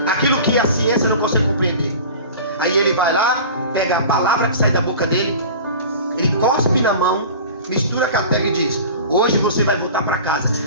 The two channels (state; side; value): inverted; both; correlation -0.38